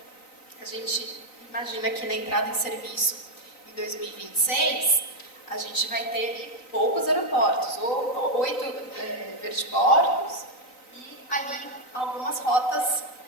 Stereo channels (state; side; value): late; right; 3.9 ms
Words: A gente imagina que na entrada em serviço em 2026 a gente vai ter poucos aeroportos, ou 8 vertiportos e ali algumas rotas